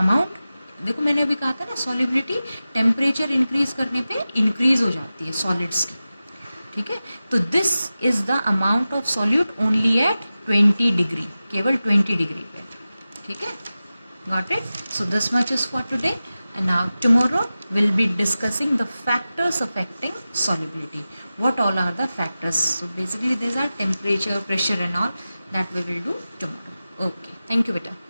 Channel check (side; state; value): both; inverted; correlation -0.95